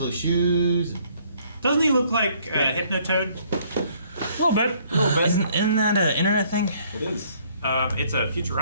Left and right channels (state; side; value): inverted; both; correlation -0.63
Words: shoes. Doesn't he look like Hypnotoad? A little bit. Isn't that an internet thing? It is. It's a